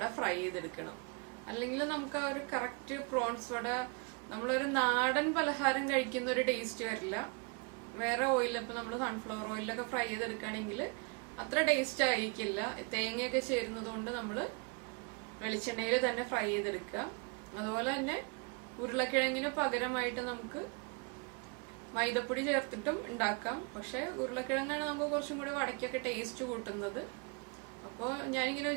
ഫ്രൈ ചെയ്തെടുക്കണം. അല്ലെങ്കിൽ നമുക്ക് ആ ഒരു കറക്റ്റ് പ്രോൺസ് വട നമ്മളൊരു നാടൻ പലഹാരം കഴിക്കുന്ന ഒരു ടേസ്റ്റ് വരില്ല. വേറെ ഓയിൽ, ഇപ്പൊ നമ്മൾ സൺഫ്ലവർ ഓയിലൊക്കെ ഫ്രൈ ചെയ്തെടുക്കുകയാണെങ്കിൽ അത്ര ടേസ്റ്റ് ആയിരിക്കില്ല. തേങ്ങയൊക്കെ ചേരുന്നത് കൊണ്ട് നമ്മൾ വെളിച്ചെണ്ണയിൽ തന്നെ ഫ്രൈ ചെയ്തെടുക്കുക. അതുപോലെ തന്നെ ഉരുളക്കിഴങ്ങിന് പകരമായിട്ട് നമുക്ക് മൈദപ്പൊടി ചേർത്തിട്ടും ഉണ്ടാക്കാം. പക്ഷെ ഉരുളക്കിഴങ്ങാണ് നമുക്ക് കുറച്ചും കൂടി വടക്കൊക്കെ ടേസ്റ്റ് കൂട്ടുന്നത്. അപ്പോൾ ഞാനിങ്ങനെ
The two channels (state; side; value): quieter; left; 32.6 dB